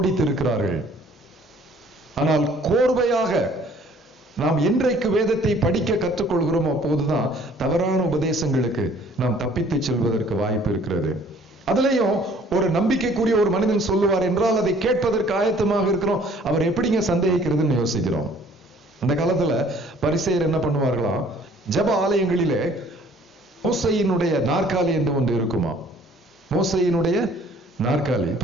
ஆனால் கோர்வையாக நாம் என்றைக்கு வேதத்தை படிக்க கற்றுக்கொள்கிறோம், அப்போதுதான் தவறான உபதேசங்களுக்கு நாம் தப்பித்து செல்வதற்கு வாய்ப்பு இருக்கிறது. அதுலயும் ஒரு நம்பிக்கைக்குரிய ஒரு மனிதன் சொல்லுவார் என்றால் அதை கேட்பதற்கு ஆயத்தமாக இருக்கிறோம். அவர் எப்படிங்க சந்தேகிக்கிறதுன்னு யோசிக்கிறோம். அந்த காலத்துல பரிசேயர் என்ன பண்ணுவார்களாம், ஜெப ஆலயங்களிலே மோசையினுடைய நாற்காலி என்று ஒன்று இருக்குமா. மோசையினுடைய நாற்காலி.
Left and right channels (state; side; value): normal; both; correlation 0.56